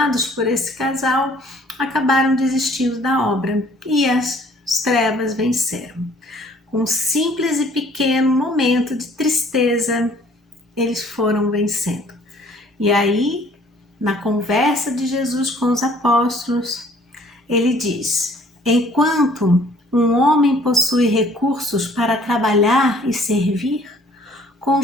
por esse casal, acabaram desistindo da obra, e as trevas venceram. Com um simples e pequeno momento de tristeza, eles foram vencendo. E aí, na conversa de Jesus com os apóstolos, ele diz: enquanto um homem possui recursos para trabalhar e servir, com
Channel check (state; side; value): normal; both; correlation 0.57